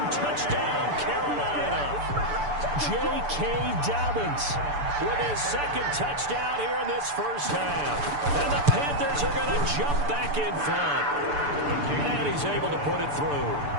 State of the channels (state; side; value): late; left; 6.9 ms